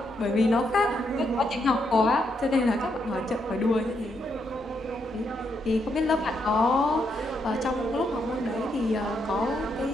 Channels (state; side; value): normal; both; correlation 0.79